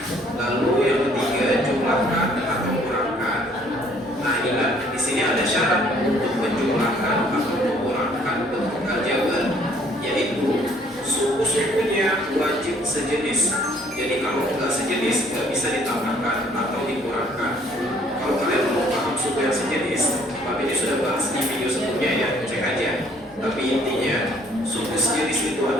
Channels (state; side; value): normal; both; correlation 0.61